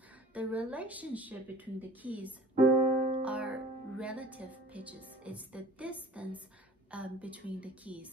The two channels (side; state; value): both; normal; correlation 0.47